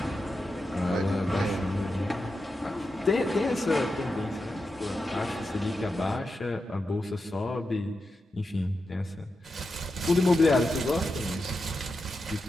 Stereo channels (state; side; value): normal; both; correlation 0.89